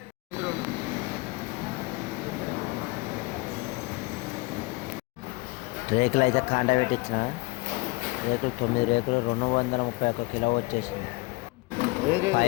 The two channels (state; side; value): quieter; right; 24.2 dB